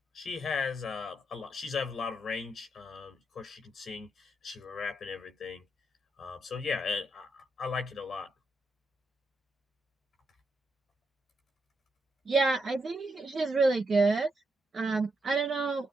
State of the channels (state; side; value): normal; both; correlation 0.81